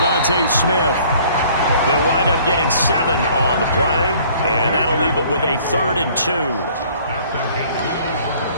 Smith. They'll wind up getting 7 on the play, and that'll leave them with a 3rd and 2.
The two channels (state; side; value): inverted; both; correlation -0.55